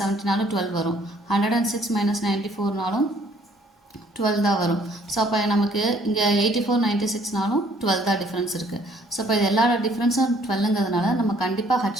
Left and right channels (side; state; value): both; normal; correlation 0.61